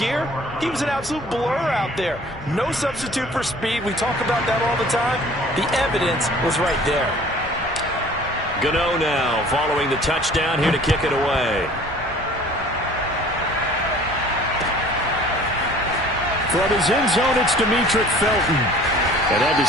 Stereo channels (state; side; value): normal; both; correlation 0.50